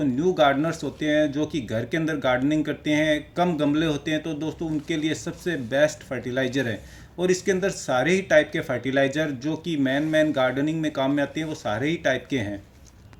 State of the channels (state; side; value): identical; both; correlation 1.00